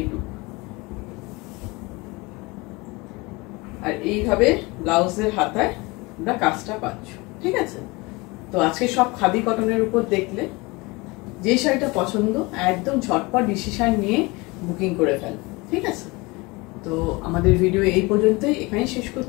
লুক। আর এইভাবে ব্লাউজের হাতায় তোমরা কাজটা পাচ্ছ, ঠিক আছে। তো আজকে সব খাদি কটনের উপর দেখলে, যে শাড়িটা পছন্দ একদম ঝটপট ডিসিশন নিয়ে বুকিং করে ফেল, ঠিক আছে। তো আমাদের ভিডিও এই পর্যন্তই, এখানেই শেষ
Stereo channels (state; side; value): quieter; right; 24.6 dB